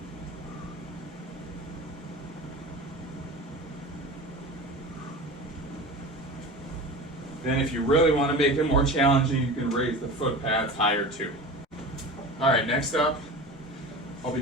Then if you really want to make it more challenging, you can raise the foot pads higher too. All right, next up, I'll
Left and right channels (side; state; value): both; normal; correlation 0.32